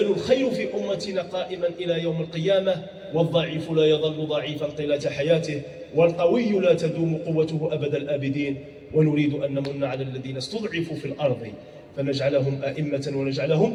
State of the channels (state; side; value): identical; both; correlation 1.00